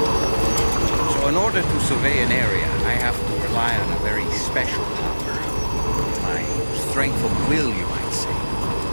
In order to survey an area, I have to rely on a very special power. My strength of will, you might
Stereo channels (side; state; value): both; inverted; correlation -1.00